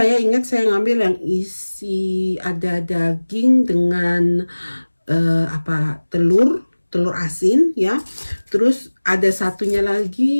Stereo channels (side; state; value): both; inverted; correlation -1.00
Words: ingat saya ngambil yang isi ada daging dengan telur asin ya. Terus ada satunya